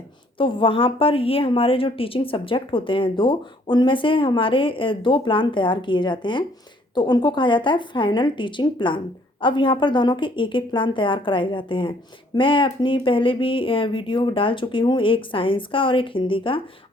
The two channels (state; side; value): normal; both; correlation 0.63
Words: तो वहाँ पर ये हमारे जो टीचिंग सब्जेक्ट होते हैं दो, उनमें से हमारे दो प्लान तैयार किए जाते हैं, तो उनको कहा जाता है फाइनल टीचिंग प्लान। अब यहाँ पर दोनों के एक एक प्लान तैयार कराए जाते हैं। मैं अपनी पहले भी वीडियो डाल चुकी हूँ, एक साइंस का और एक हिंदी का।